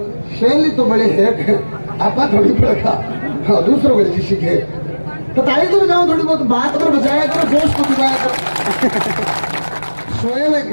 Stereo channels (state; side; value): inverted; both; correlation -1.00